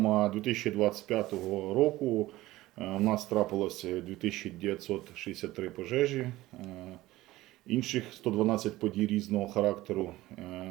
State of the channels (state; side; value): quieter; left; 17.3 dB